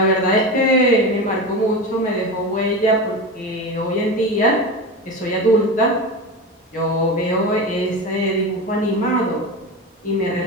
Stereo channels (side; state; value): both; normal; correlation 0.24